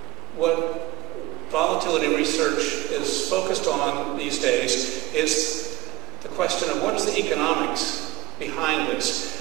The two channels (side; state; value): left; quieter; 19.8 dB